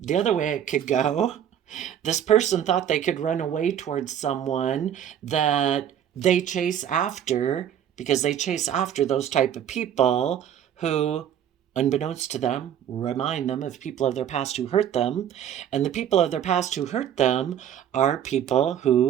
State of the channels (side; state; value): left; quieter; 9.7 dB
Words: other way it could go, this person thought they could run away towards someone that they chase after, because they chase after those type of people who, unbeknownst to them, remind them of people of their past who hurt them. And the people of their past who hurt them are people